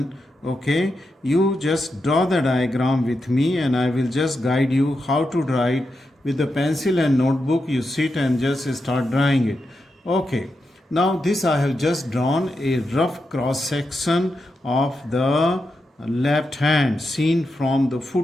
okay, you just draw the diagram with me and I will just guide you how to draw it. With the pencil and notebook, you sit and just start drawing it. Okay, now this I have just drawn a rough cross section of the left hand seen from the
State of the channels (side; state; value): both; normal; correlation 0.87